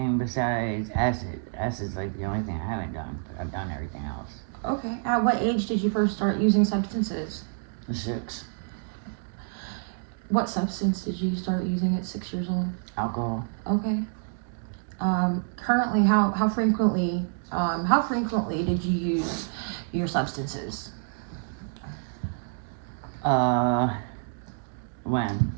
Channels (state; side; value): silent; left; digital silence